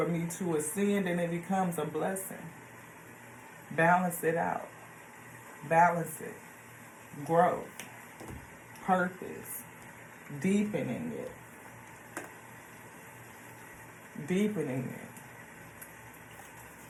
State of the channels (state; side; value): identical; both; correlation 1.00